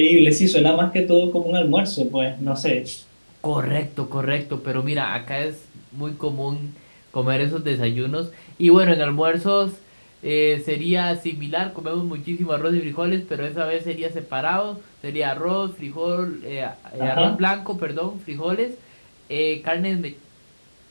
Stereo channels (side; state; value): both; inverted; correlation -1.00